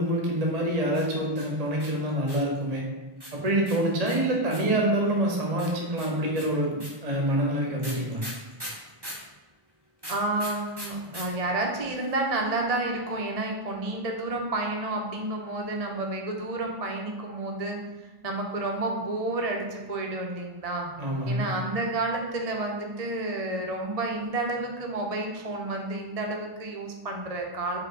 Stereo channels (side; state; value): left; late; 1.1 ms